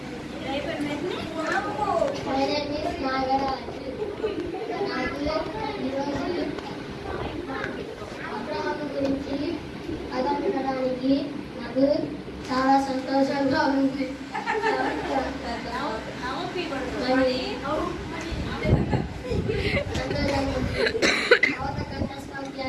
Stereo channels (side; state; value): both; identical; correlation 1.00